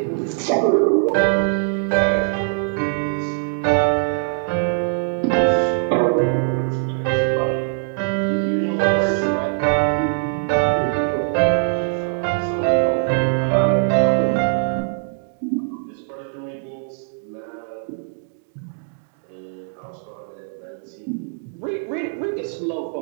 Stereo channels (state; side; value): silent; left; digital silence